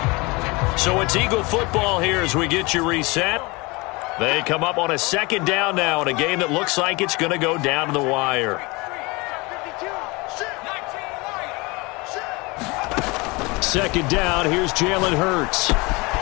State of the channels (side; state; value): right; quieter; 25.4 dB